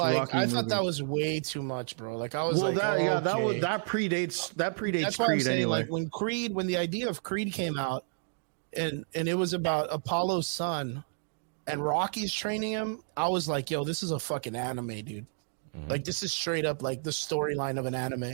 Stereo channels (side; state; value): left; silent; digital silence